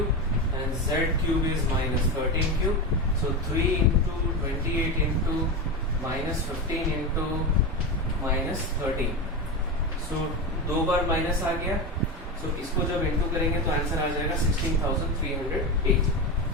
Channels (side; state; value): both; normal; correlation 0.18